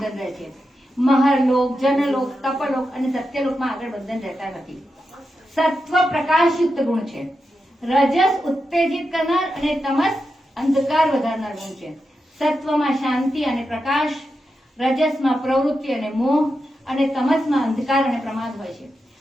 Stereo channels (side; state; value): both; normal; correlation 0.88